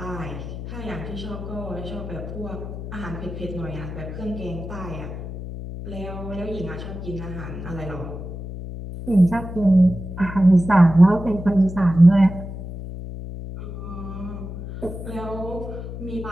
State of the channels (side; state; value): left; noise; hum, 9 dB below the sound